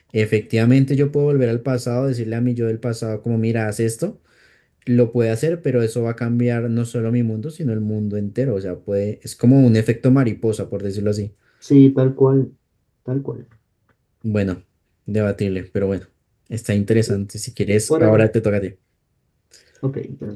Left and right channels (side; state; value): both; identical; correlation 1.00